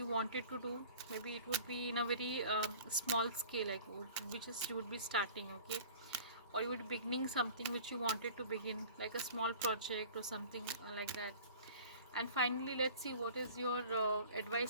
wanted to do. Maybe it would be in a very small scale, like which is you would be starting. Okay, or you would be beginning something which you wanted to begin, like a small project or something like that. And finally, let's see what is your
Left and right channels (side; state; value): both; inverted; correlation -0.44